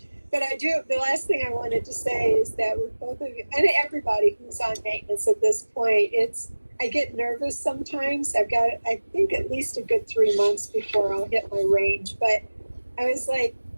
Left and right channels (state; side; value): inverted; both; correlation -1.00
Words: But the last thing I wanted to say is that with both of you, and everybody who's on maintenance at this point, I get nervous sometimes. I've got, I think, at least a good 3 months before I'll hit my range. But I was like,